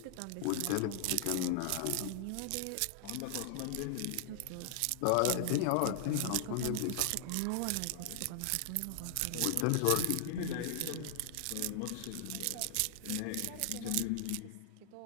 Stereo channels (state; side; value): different; both; correlation 0.00